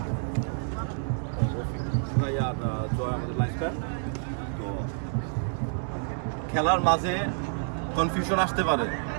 রফিক ভাই আর জয় আমাদের লাইফস্টাইল। তো খেলার মাঝে কনফিউশন আসতে পারে,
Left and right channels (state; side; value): silent; left; digital silence